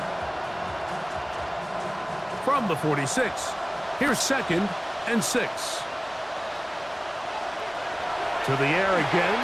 From the 46, here's 2nd and 6. To the air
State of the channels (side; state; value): left; noise; hum, 28 dB below the sound